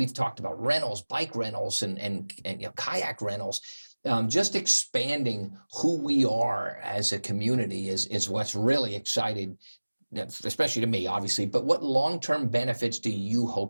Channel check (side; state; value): both; inverted; correlation -1.00